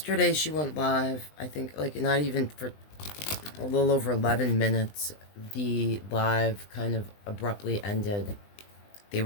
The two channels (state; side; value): late; right; 20 ms